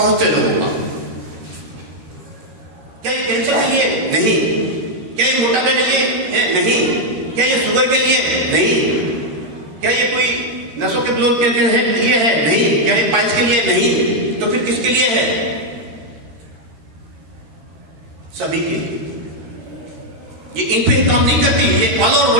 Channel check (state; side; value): late; left; 13 ms